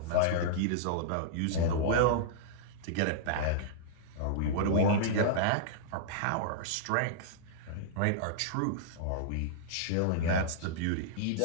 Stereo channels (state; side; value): different; both; correlation -0.02